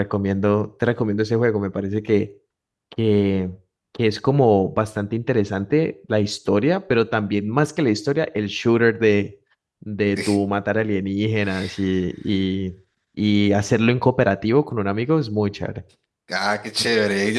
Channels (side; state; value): both; identical; correlation 1.00